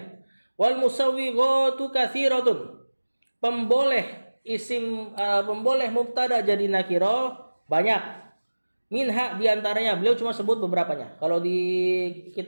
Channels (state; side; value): inverted; both; correlation -1.00